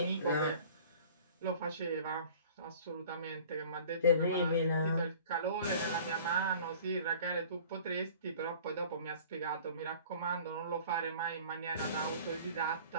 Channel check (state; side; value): inverted; both; correlation -0.46